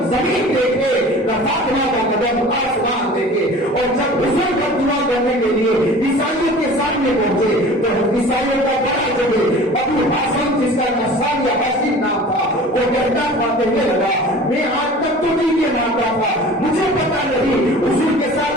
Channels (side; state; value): both; normal; correlation 0.42